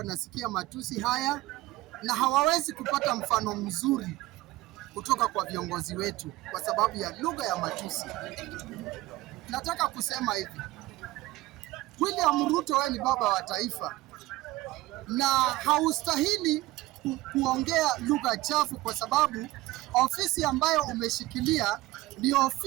matusi haya na hawawezi kupata mfano mzuri kutoka kwa viongozi wetu kwa sababu ya lugha ya matusi. Nataka kusema hivi, William Ruto, wewe ni baba wa taifa na haustahili kuongea lugha chafu, kwa sababu ofisi ambayo umeshikilia ni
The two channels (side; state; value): left; quieter; 18.3 dB